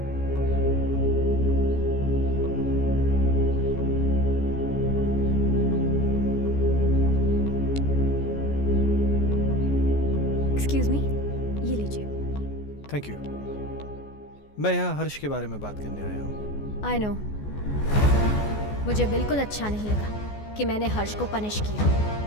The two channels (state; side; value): late; right; 14 ms